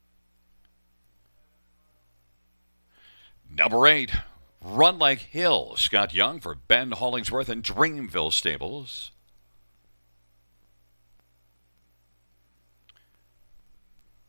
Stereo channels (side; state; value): both; inverted; correlation -1.00